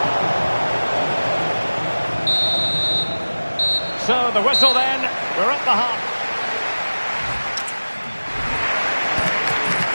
So the whistle then. We're at the half.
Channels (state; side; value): inverted; both; correlation -1.00